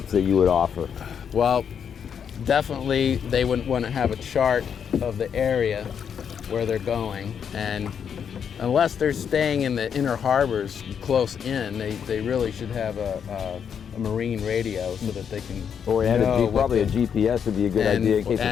that you would offer? Well, definitely they wouldn't want to have a chart of the area where they're going, and unless they're staying in the inner harbors close in, they really should have a marine radio so that they can Probably a GPS would be a good idea in case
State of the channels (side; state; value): right; quieter; 7.6 dB